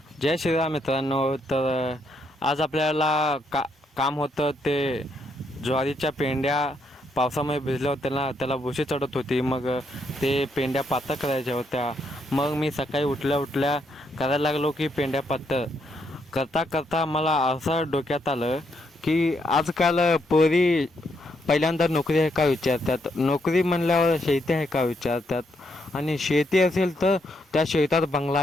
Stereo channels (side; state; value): both; normal; correlation 0.76